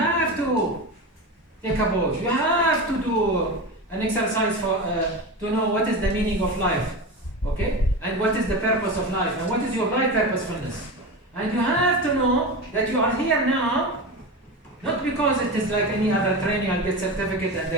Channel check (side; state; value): both; normal; correlation 0.24